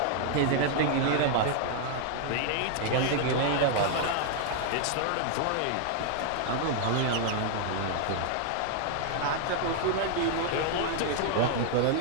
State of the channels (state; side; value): different; both; correlation 0.00